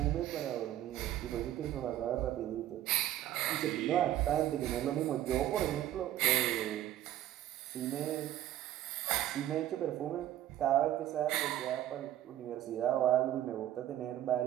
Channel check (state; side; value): quieter; left; 12.8 dB